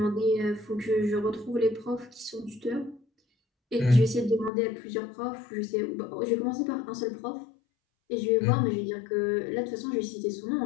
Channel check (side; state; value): right; drops out; at 4.5 s